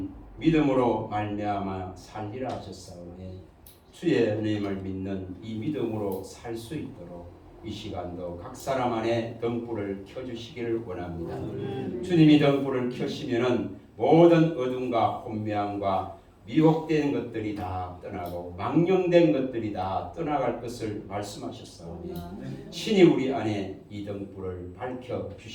믿음으로 말미암아 살리라 하셨사오니 주의 은혜임을 믿는 이 믿음으로 살 수 있도록 이 시간도 각 사람 안에 등불을 켜주시기를 원합니다. 주님이 등불을 켜시면은 모든 어둠과 혼미함과 미혹된 것들이 다 떠나고 망령된 것들이 다 떠나갈 것을 말씀하셨사오니 친히 우리 안에 이 등불을 밝혀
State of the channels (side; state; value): both; identical; correlation 1.00